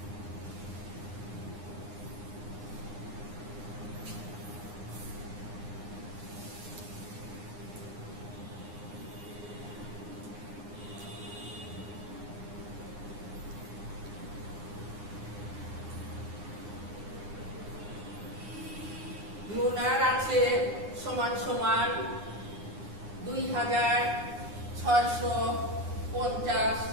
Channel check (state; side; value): late; left; 9.7 ms